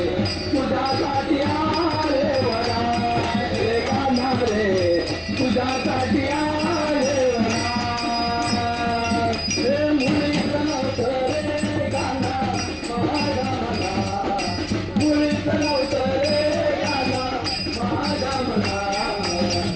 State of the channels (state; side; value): identical; both; correlation 1.00